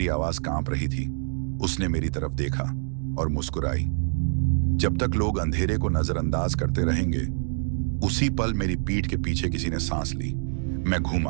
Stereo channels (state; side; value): silent; left; digital silence